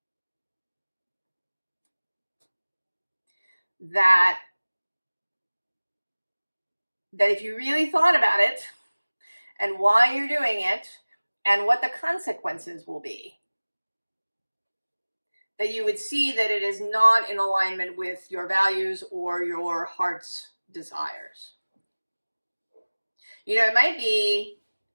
That that if you really thought about it and why you're doing it and what the consequences will be, that you would see that it is not in alignment with your values or your heart's desires. You know, it might be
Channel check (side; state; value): both; inverted; correlation -1.00